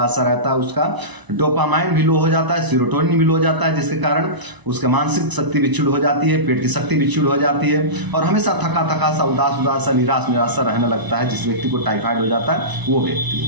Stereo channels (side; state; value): left; late; 1.0 ms